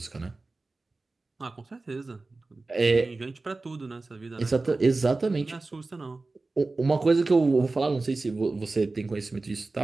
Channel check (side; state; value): left; quieter; 3.4 dB